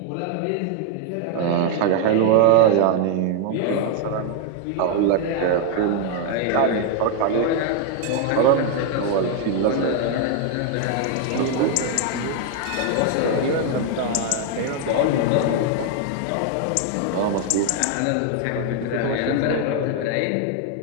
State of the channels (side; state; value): both; different; correlation 0.00